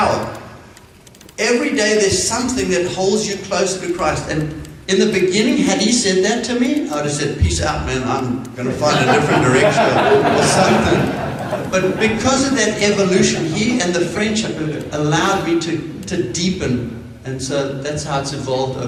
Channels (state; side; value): identical; both; correlation 1.00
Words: Every day there's something that holds you closer to Christ. And in the beginning, had he said that to me, I would have said, peace out, man, I'm going to find a different direction or something. But because of that evolution, he and the friendship have allowed me to deepen. And so that's how it's evolved